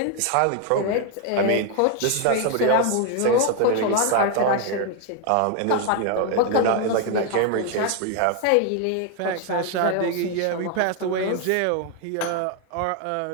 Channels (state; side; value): different; both; correlation 0.01